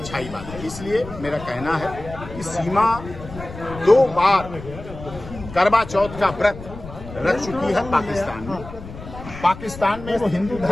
ही बात है। इसलिए मेरा कहना है कि सीमा 2 बार करवा चौथ का व्रत रख चुकी है पाकिस्तान में। पाकिस्तान में वो हिंदू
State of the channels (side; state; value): left; noise; rumble, 13 dB below the sound